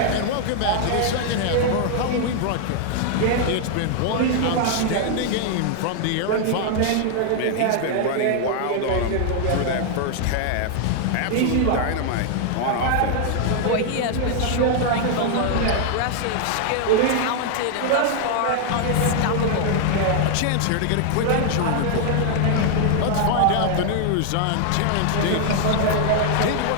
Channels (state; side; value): different; both; correlation 0.00